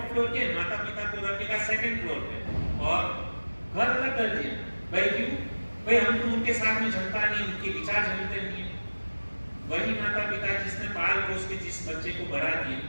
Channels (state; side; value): inverted; both; correlation -1.00